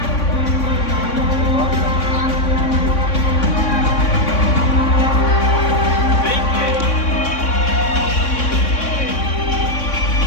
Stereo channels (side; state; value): right; late; 3.6 ms